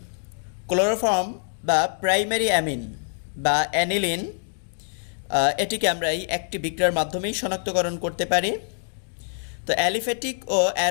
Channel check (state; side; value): silent; right; digital silence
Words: ক্লোরোফর্ম বা প্রাইমারি অ্যামিন বা অ্যানিলিন, এটিকে আমরা এই একটি বিক্রিয়ার মাধ্যমেই শনাক্তকরণ করতে পারি। তো অ্যালিফেটিক ও